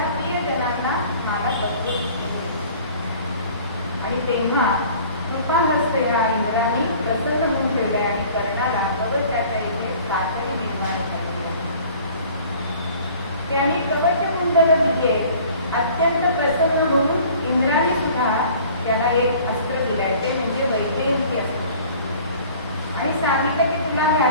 प्रियजनांना मला सत्य आणि तेव्हा कृपाग्रस्त ह्या इंद्राने प्रसन्न होऊन ठेवले आणि कर्णाला कवचाच्या इथे कातडी निर्माण झाली. त्याने कवच कुंडल दिले. अत्यंत प्रसन्न होऊन इंद्राने सुद्धा त्याला एक अस्त्र दिलाय, ते म्हणजे वैजयंती अस्त्र, आणि सांगितलं की तुला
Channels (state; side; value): inverted; both; correlation -0.49